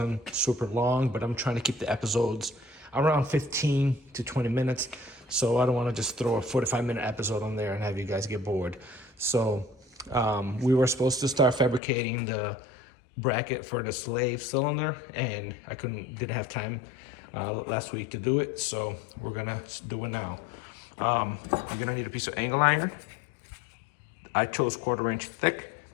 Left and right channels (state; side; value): drops out; right; at 11.8 s